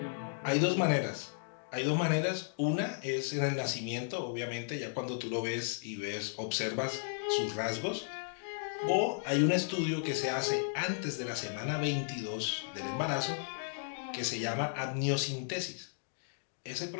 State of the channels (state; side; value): silent; right; digital silence